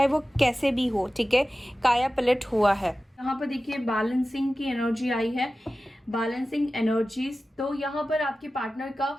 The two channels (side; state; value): both; normal; correlation 0.95